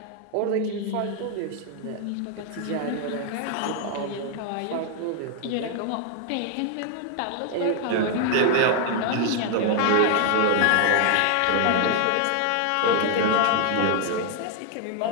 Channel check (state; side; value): different; both; correlation 0.00